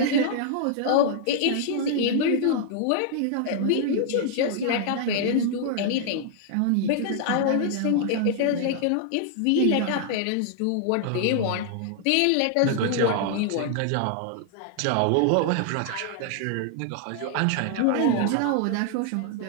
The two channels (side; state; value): both; different; correlation 0.00